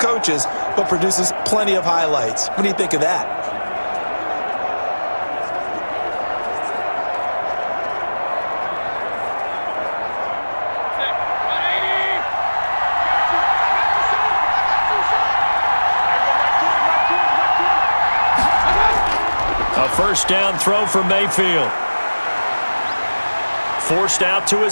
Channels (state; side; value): inverted; both; correlation -1.00